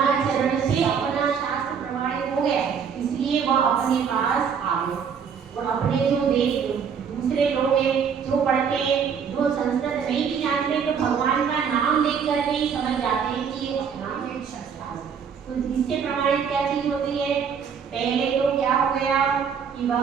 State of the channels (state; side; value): quieter; left; 6.9 dB